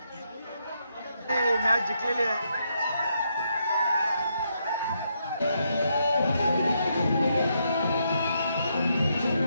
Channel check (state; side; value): inverted; both; correlation -0.78